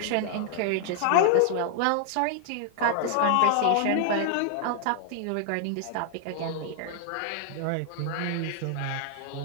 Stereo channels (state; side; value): different; both; correlation 0.00